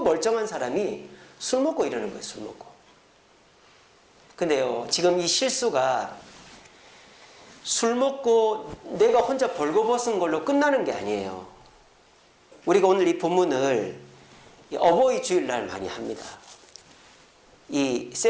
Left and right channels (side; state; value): both; identical; correlation 1.00